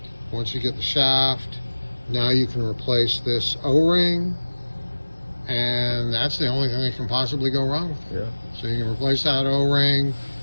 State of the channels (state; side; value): inverted; both; correlation -1.00